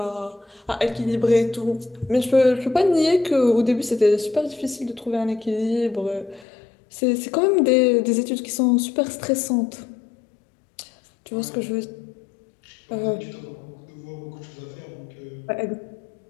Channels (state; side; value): drops out; right; at 6.5 s